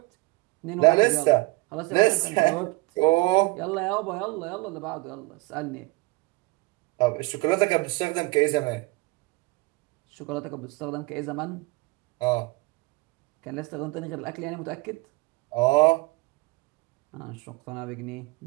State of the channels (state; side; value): quieter; left; 24.0 dB